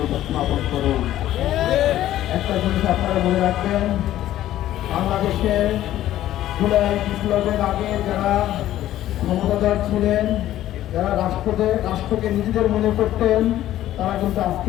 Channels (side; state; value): right; quieter; 13.3 dB